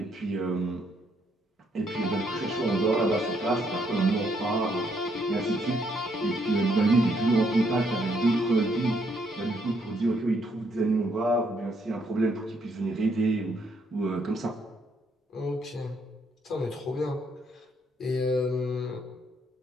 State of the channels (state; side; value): normal; both; correlation 0.72